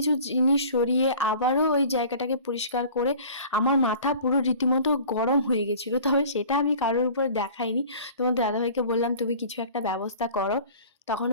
জিনিস সরিয়ে আবারও ওই জায়গাটাকে পরিষ্কার করে আমার মাথা পুরো রীতিমতো গরম হয়ে গেছিলো। তবে সেটা আমি কারোর উপর দেখাইনি, তোমার দাদাভাইকে বললাম তুমি কিছু একটা ব্যবস্থা করো। তখন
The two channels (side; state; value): both; inverted; correlation -0.44